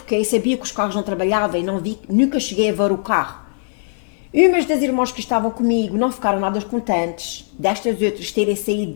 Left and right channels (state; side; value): silent; right; digital silence